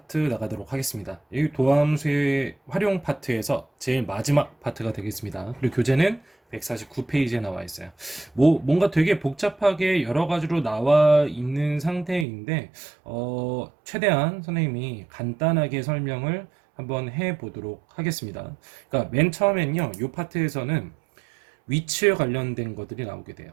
나가도록 하겠습니다. 이 도함수의 활용 파트에서 제일 마지막 파트가 되겠습니다. 그리고 교재는 149페이지에 나와 있어요. 뭔가 되게 복잡하게 여러 가지로 나와 있는 상태인데, 최대한 선생님이 간단하게 설명을 한번 해 보도록 하겠습니다. 그러니까 맨 처음엔요, 이 파트에서는 위치에 관련된 것들이 나오게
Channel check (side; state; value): left; drops out; at 12.2 s